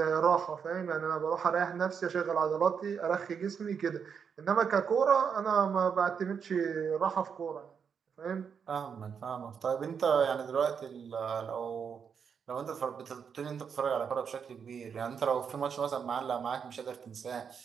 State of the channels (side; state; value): left; quieter; 6.8 dB